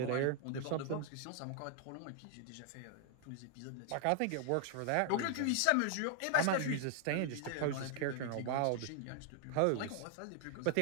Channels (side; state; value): both; different; correlation 0.00